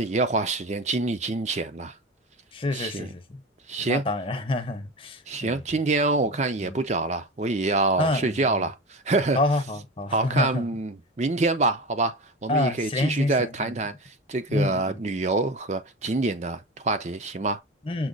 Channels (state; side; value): normal; both; correlation 0.27